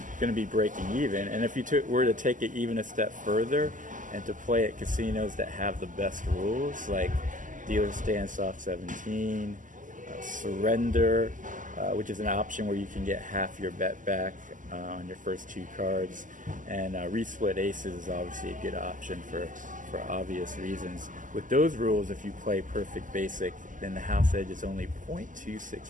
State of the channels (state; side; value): late; left; 0.38 ms